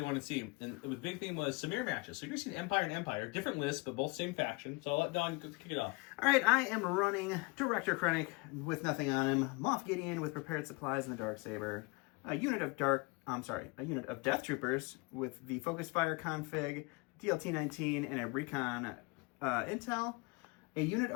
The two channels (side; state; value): right; quieter; 27.3 dB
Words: want to see. And the big thing was some mirror matches. So you're going to see Empire and Empire. Different lists, but both same faction. So I'll let Don kick it off. All right, I am running Director Krennic with nothing on him. Moff Gideon with prepared supplies and the Darksaber. A unit of Death Troopers with the Focus Fire config, DLT-19, and a Recon Intel. A unit